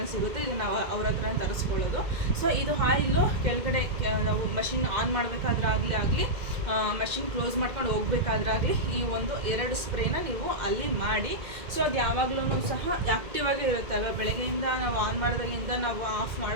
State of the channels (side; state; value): left; late; 2.1 ms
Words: ಸಿಗುತ್ತೆ, ಇದು ನಾವು ಅವ್ರ ಹತ್ರನೇ ತರಿಸ್ಕೊಳ್ಳೋದು. ಸೊ ಇದು ಆಯಿಲು ಕೆಳಗಡೆ ನಾವು ಮಷಿನ್ ಆನ್ ಮಾಡಬೇಕಾದ್ರೆ ಆಗಲಿ ಮಷಿನ್ ಕ್ಲೋಸ್ ಮಾಡ್ಕೊಂಡು ಹೋಗ್ಬೇಕಾದ್ರಾಗಲಿ ಈ 2 ಸ್ಪ್ರೇನ ನೀವು ಅಲ್ಲಿ ಮಾಡಿ. ಸೊ ಅದು ಯಾವಾಗಲೂ ಸಹ ಆ್ಯಕ್ಟಿವ್ ಆಗೇ ಇರುತ್ತೆ ಅಲ್ವಾ, ಬೆಳಗ್ಗೆಯಿಂದ ನಾವು ಆನ್ ಮಾಡಿದಾಗಿಂದ ನಾವು ಆಫ್